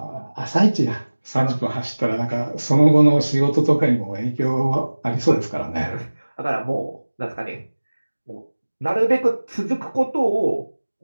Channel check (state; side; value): inverted; both; correlation -1.00